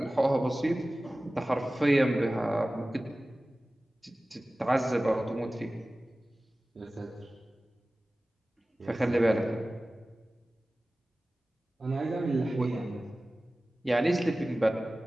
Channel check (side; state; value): both; normal; correlation 0.97